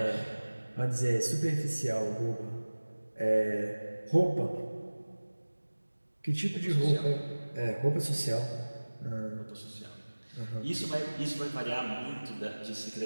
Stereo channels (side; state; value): both; inverted; correlation -1.00